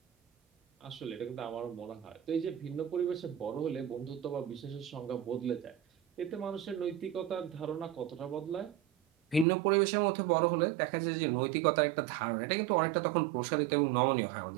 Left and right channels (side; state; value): left; drops out; at 9.5 s